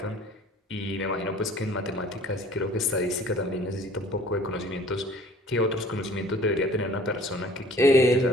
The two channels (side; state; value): both; normal; correlation 0.51